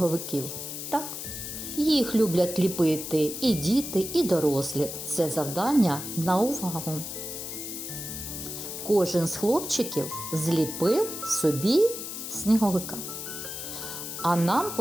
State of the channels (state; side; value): noise; left; hiss, 7 dB below the sound